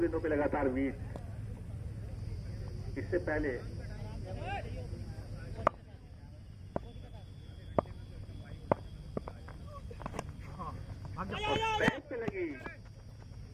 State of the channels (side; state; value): both; identical; correlation 1.00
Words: पे लगातार बीट। इससे पहले बैट पे लगी,